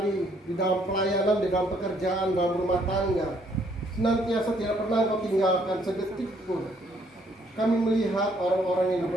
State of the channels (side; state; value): both; normal; correlation 0.67